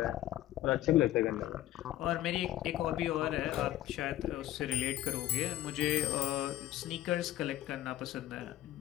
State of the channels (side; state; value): right; quieter; 14.2 dB